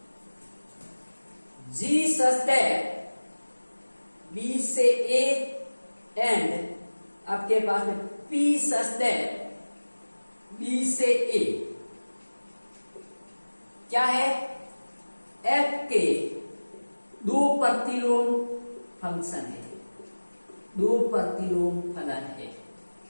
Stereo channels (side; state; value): both; inverted; correlation -1.00